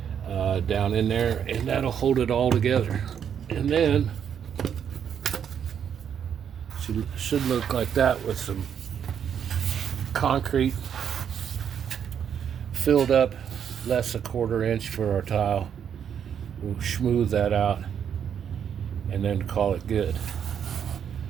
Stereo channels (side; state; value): left; quieter; 8.3 dB